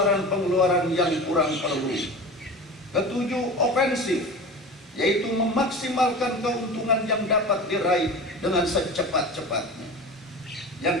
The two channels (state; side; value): normal; both; correlation 0.33